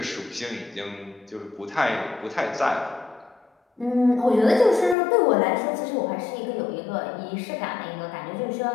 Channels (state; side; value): drops out; right; at 5.0 s